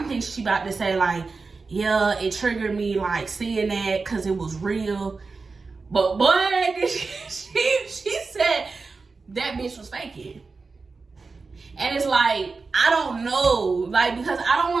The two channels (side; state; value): left; quieter; 4.2 dB